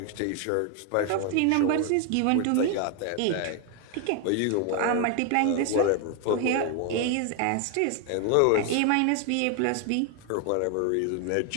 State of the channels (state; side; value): different; both; correlation 0.01